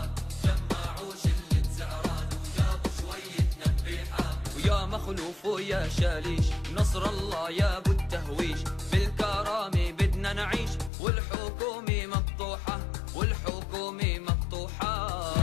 جمعوا شلة زعران وجابوا شوية نبيحة. ويا مخلوف ويا شاليش، نصر الله يا ابو التهويش، بالكرامة بدنا نعيش، والحكومة مقطوحة والحكومة مقطوحة.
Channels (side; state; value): right; drops out; at 10.9 s